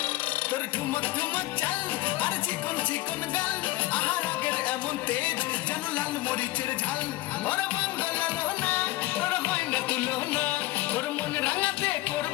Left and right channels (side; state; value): right; quieter; 18.3 dB